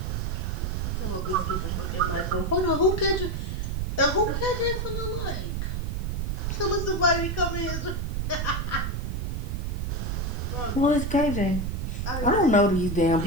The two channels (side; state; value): right; noise; rumble, 1 dB below the sound